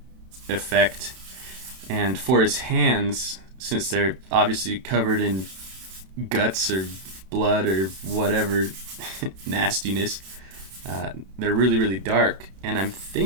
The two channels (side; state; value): left; late; 32 ms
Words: effect. And for his hands, since they're obviously covered in guts or blood or whatever nastiness, they're really, really dark. And I'm